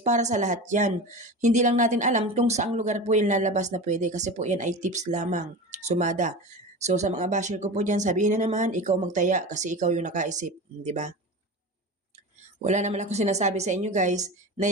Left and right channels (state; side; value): normal; both; correlation 0.29